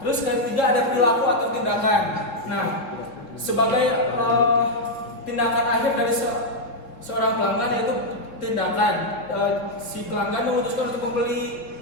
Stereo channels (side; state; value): right; late; 3.5 ms